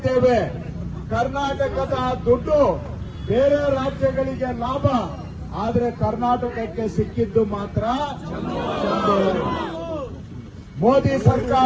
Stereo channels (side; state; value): both; identical; correlation 1.00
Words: ಕರ್ನಾಟಕದ ದುಡ್ಡು ಬೇರೆ ರಾಜ್ಯಗಳಿಗೆ ಲಾಭ, ಆದ್ರೆ ಕರ್ನಾಟಕಕ್ಕೆ ಸಿಕ್ಕಿದ್ದು ಮಾತ್ರ ಚಂಬು. ಮೋದಿ